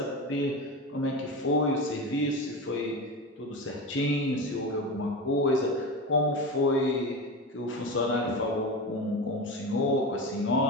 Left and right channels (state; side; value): normal; both; correlation 0.24